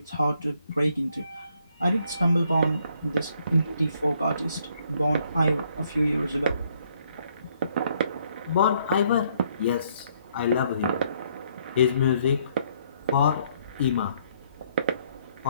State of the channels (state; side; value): inverted; both; correlation -0.69